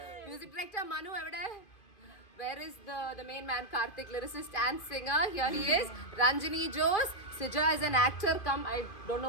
Music director Manu evade. Where is the main man Karthik, lyricist and singer? Here he is. Ranjini Jose. Sija is an actor. I don't know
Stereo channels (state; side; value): late; right; 2.5 ms